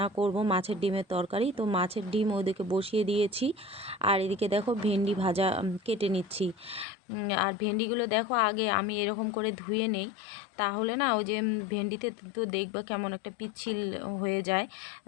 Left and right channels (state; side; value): drops out; right; at 6.9 s